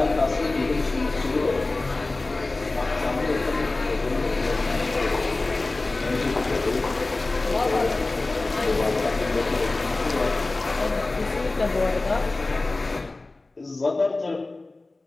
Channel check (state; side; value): quieter; right; 3.2 dB